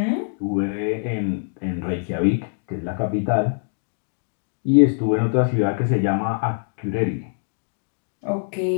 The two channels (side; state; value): right; silent; digital silence